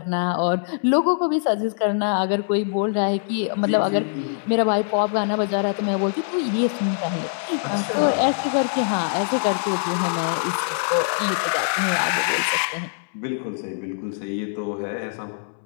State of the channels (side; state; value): right; silent; 63 dB below the other